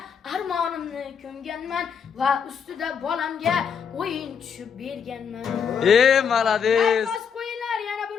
armonimni ko'mganman va ustida bolamga o'yin tushib berganman. Malades. Bas qo'yinglar yana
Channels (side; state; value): right; quieter; 7.0 dB